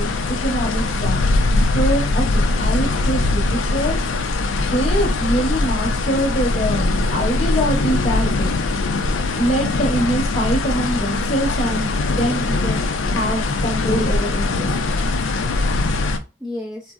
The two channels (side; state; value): both; normal; correlation 0.63